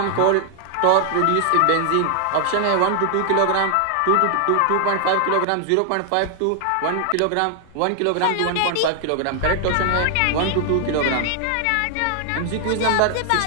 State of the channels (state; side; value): different; both; correlation 0.00